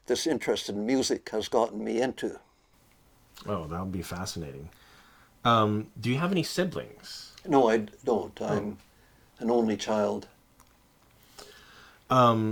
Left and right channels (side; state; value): both; identical; correlation 1.00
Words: this interest in music has gotten me into. Oh, that would be fascinating. Do you have any siblings? No, I don't. I'm an only child.